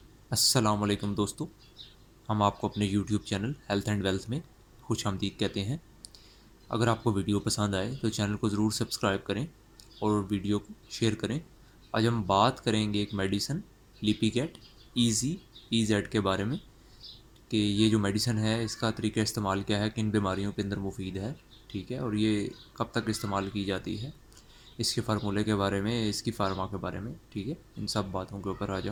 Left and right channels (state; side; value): identical; both; correlation 1.00